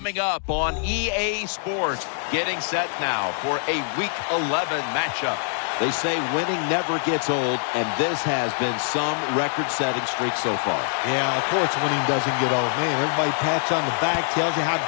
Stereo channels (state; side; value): silent; right; digital silence